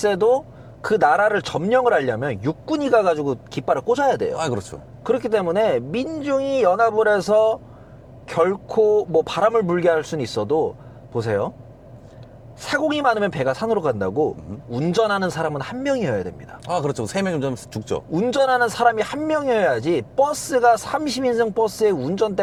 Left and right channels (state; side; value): identical; both; correlation 1.00